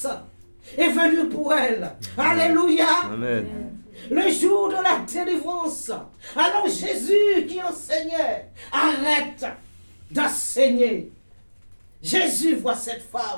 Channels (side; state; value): both; inverted; correlation -1.00